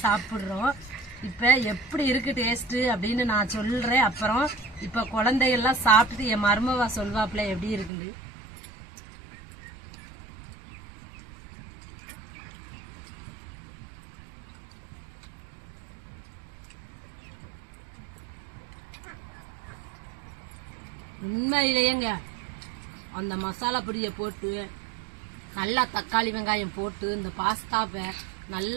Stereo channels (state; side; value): drops out; left; at 7.9 s